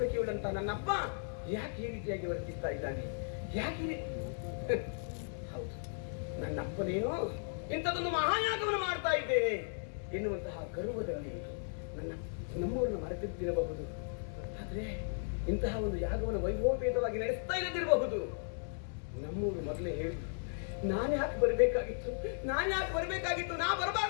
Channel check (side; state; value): right; silent; digital silence